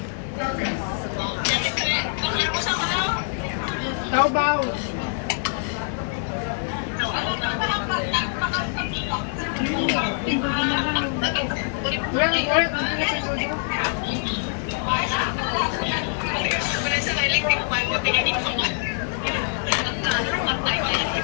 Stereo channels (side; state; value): right; silent; digital silence